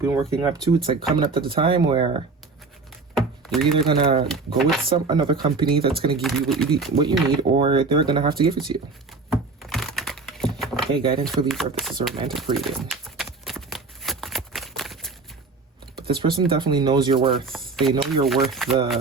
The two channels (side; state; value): left; quieter; 4.1 dB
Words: been working up to, it's like coming up to the time where you're either going to go with another company that's going to give you what you need, or they're going to have to give it to you. Okay, guidance for Libra. This is a romantic reading. But this person definitely knows your worth. They know you're worth